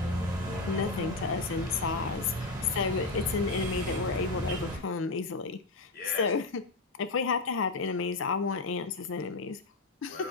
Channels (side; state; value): right; quieter; 3.4 dB